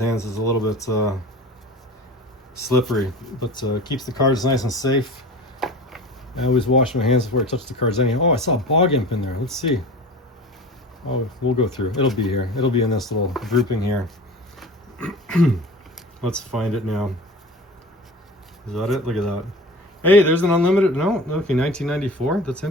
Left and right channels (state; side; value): normal; both; correlation 0.36